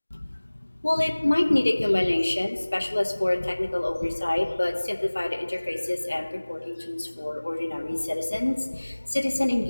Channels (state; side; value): inverted; both; correlation -1.00